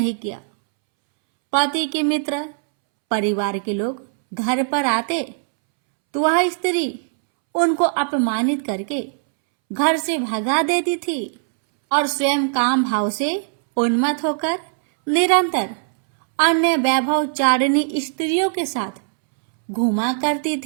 किया। पति के मित्र, परिवार के लोग घर पर आते तो वह स्त्री उनको अपमानित करके घर से भगा देती थी और स्वयं काम भाव से उन्मत्त होकर निरंतर अन्य वैभवचारिणी स्त्रियों के साथ घूमा करती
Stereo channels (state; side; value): silent; left; 66 dB below the other